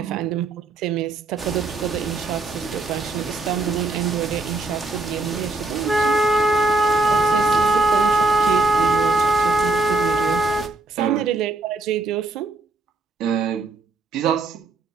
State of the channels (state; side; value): quieter; left; 3.2 dB